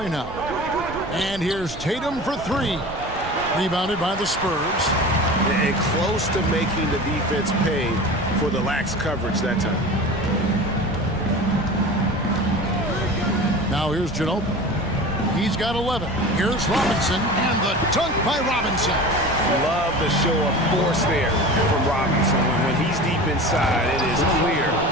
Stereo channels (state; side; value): noise; right; rumble, 14 dB below the sound